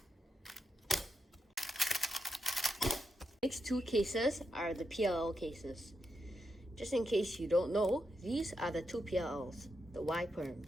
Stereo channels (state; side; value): normal; both; correlation 0.85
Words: Next 2 cases are the PLL cases. Just in case you don't know, these are the 2 PLLs, the Y perm,